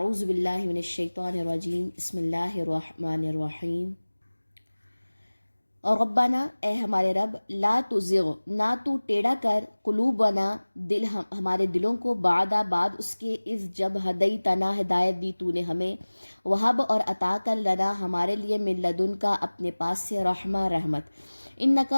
باللہ من الشیطان الرجیم، بسم اللہ الرحمن الرحیم۔ اور ربنا، اے ہمارے رب، لا تزغ، نہ تو ٹیڑھا کر، قلوبنا، دل ہمارے دلوں کو، بعد اس کے، اذ جب، ہدیتنا، ہدایت دی تو نے ہمیں، وہب اور عطا کر، لنا ہمارے لیے، من لدن کا اپنے پاس سے، رحمہ رحمت،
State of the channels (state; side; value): inverted; both; correlation -1.00